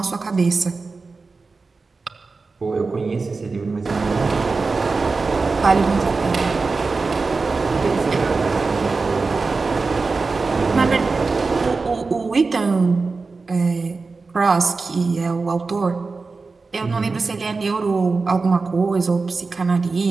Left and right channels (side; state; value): left; quieter; 4.1 dB